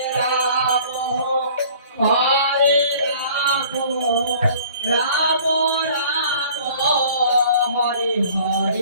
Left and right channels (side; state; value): both; inverted; correlation -0.51